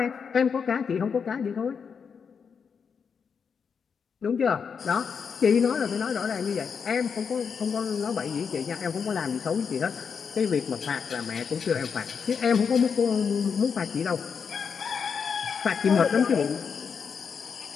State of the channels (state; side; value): quieter; right; 6.3 dB